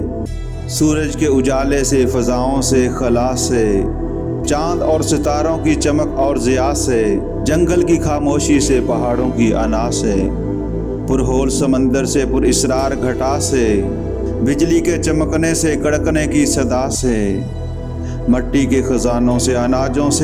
سورج کے اجالے سے، فضاؤں سے، خلا سے، چاند اور ستاروں کی چمک اور ضیاء سے، جنگل کی خاموشی سے، پہاڑوں کی انا سے، پرہول سمندر سے، پر اسرار گھٹا سے، بجلی کے چمکنے سے، کڑکنے کی صدا سے، مٹی کے خزانوں سے، اناجوں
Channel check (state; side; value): identical; both; correlation 1.00